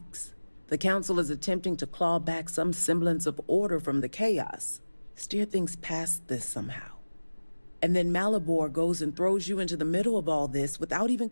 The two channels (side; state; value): both; inverted; correlation -1.00